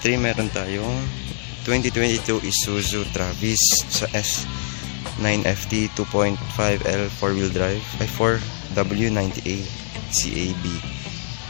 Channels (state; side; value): silent; right; 63 dB below the other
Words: meron tayong 2022 Isuzu Travis sa S9FT 2.5L 4-wheel drive ay 4W90A CAB.